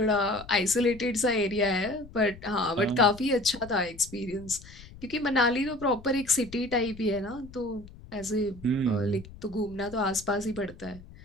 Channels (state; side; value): noise; left; rumble, 18 dB below the sound